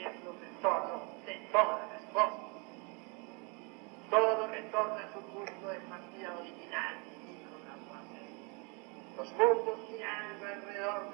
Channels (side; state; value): left; quieter; 32.1 dB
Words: retorno de todas las cosas. Todo retorna a su punto de partida original, dijo Lavoisier. Los mundos girando alrededor